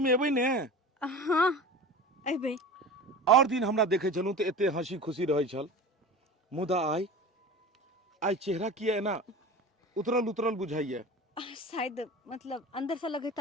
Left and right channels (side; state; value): both; normal; correlation 0.34